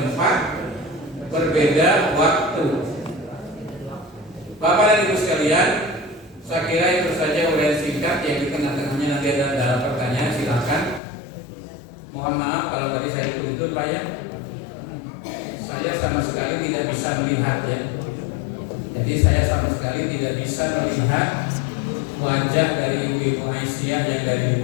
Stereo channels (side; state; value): right; drops out; at 11.0 s